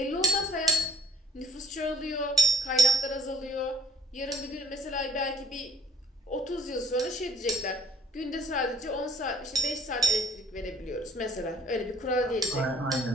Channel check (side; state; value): both; normal; correlation 0.56